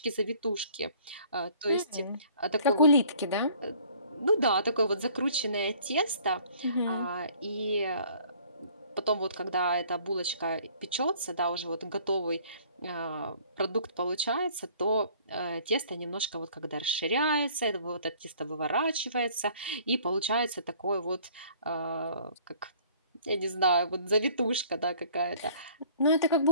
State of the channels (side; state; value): both; inverted; correlation -0.55